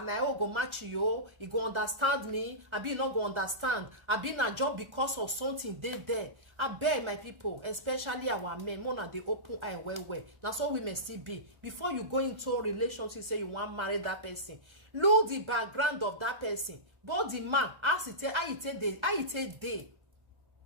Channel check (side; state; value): left; late; 1.4 ms